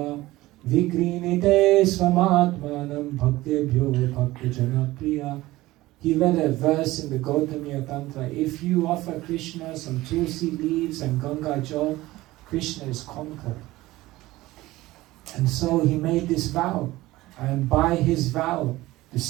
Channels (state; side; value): quieter; left; 18.1 dB